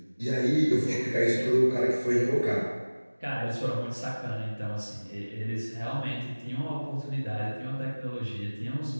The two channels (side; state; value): both; inverted; correlation -1.00